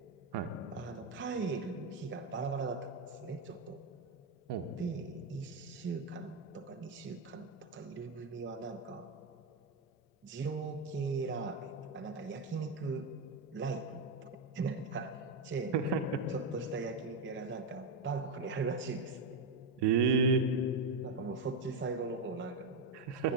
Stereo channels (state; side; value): quieter; left; 3.2 dB